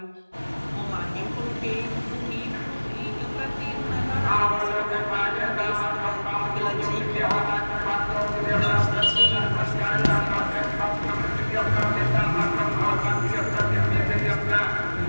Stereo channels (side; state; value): both; inverted; correlation -1.00